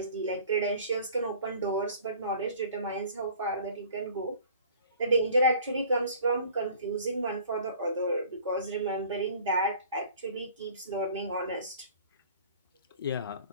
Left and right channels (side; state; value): both; inverted; correlation -0.49